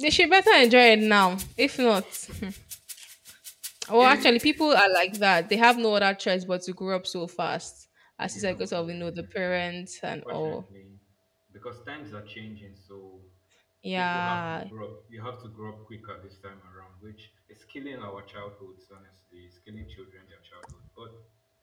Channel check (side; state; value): both; identical; correlation 1.00